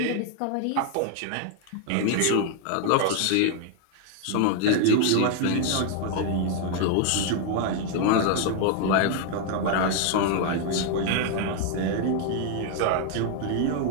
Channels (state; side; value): different; both; correlation 0.00